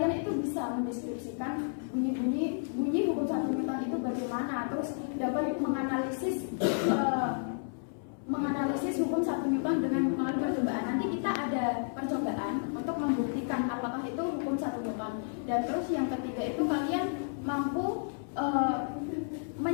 itu bisa mendeskripsikan bunyi hukum 1 Newton itu bagaimana, terus dapat menganalisis hukum 1 Newton dengan melalui percobaan. Nanti kita ada percobaan untuk membuktikan apakah itu hukum 1 Newton. Dan terus yang ketiga itu kalian mampu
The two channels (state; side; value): silent; right; 57 dB below the other